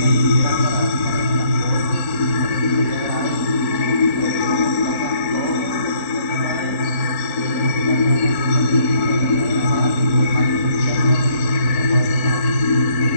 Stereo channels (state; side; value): late; right; 4.4 ms